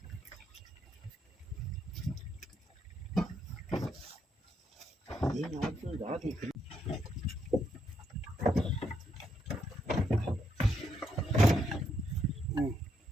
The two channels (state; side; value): normal; both; correlation 0.77